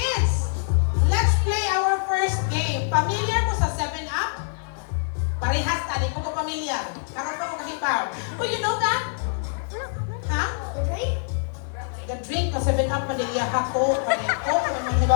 Let's play our first game. Familiar mo sa 7-Up? Parehas ta, di ko pamilya. Karoon pa ko kahibaw. Oh, you know that? Ha? The drink na 7-Up Manila Hato, Pareto,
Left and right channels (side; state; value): right; silent; 56 dB below the other